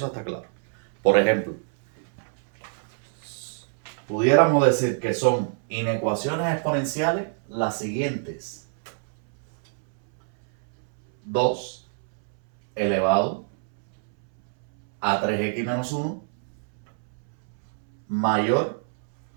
está claro. Por ejemplo, pudiéramos decir que son inecuaciones exponenciales las siguientes. 2 elevado a 3x menos 1 mayor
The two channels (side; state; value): left; silent; 61 dB below the other